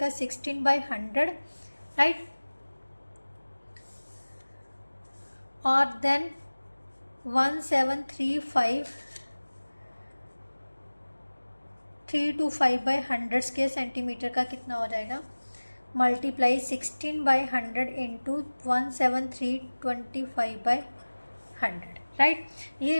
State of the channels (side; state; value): both; inverted; correlation -1.00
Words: 16 बाई 100, राइट। और देन 1735325 बाई 100 स्क्वायर सेंटीमीटर का कितना हो जाएगा, multiply 16 by 100 into 17325 by 100, right. ये